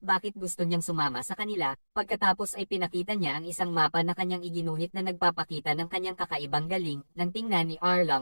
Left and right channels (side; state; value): both; inverted; correlation -1.00